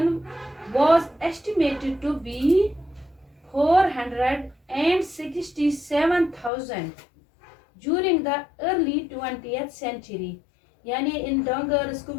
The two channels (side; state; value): right; drops out; at 6.5 s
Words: was estimated to be 467,000 during the early 20th century, यानी इन डंगर्स